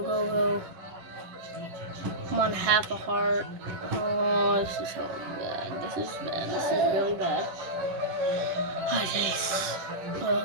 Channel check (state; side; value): late; left; 11 ms